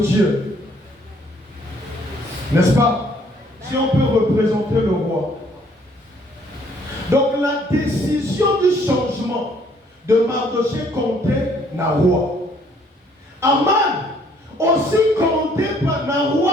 N'est-ce pas? Si on peut représenter le roi. Donc la décision du changement de Mardoché comptait na roi. Aman aussi comptait na roi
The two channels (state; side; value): normal; both; correlation 0.63